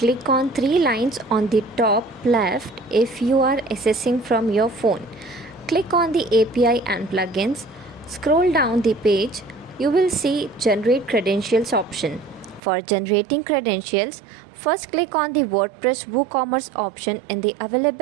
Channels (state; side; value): drops out; left; at 12.6 s